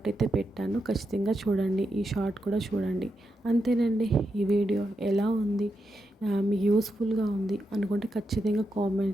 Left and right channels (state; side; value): normal; both; correlation 0.85